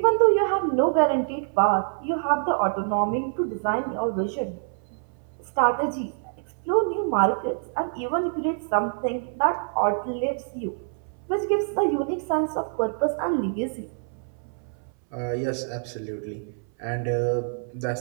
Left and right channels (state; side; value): silent; left; 61 dB below the other